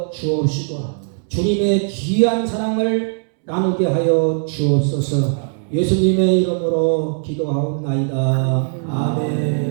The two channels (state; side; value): silent; left; 66 dB below the other